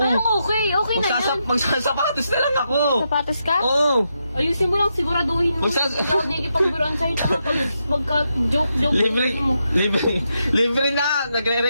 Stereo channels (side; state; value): both; inverted; correlation -0.83